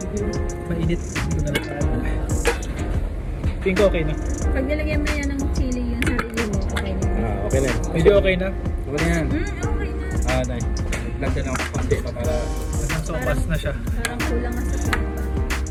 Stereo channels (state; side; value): identical; both; correlation 1.00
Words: Mainit. Ito na lang tayo. Tingin ko okay na. Pag nilagyan mo yan ng chili yung sarili mo, okay na. Okay na yun. Medyo okay na. Okay na yan. Okay na. Nice. Lagyan ako konti pa para... Nasang sopas na siya. Parang kulang nga sa papa.